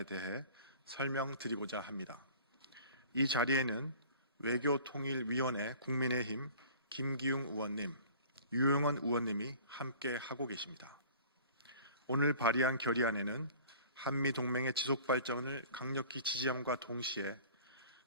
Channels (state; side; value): inverted; both; correlation -0.47